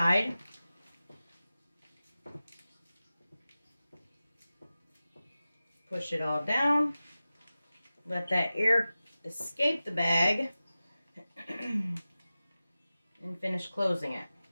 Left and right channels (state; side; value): inverted; both; correlation -0.95